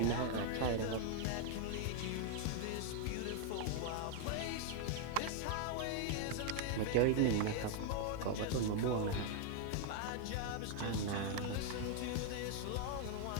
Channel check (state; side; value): different; both; correlation 0.01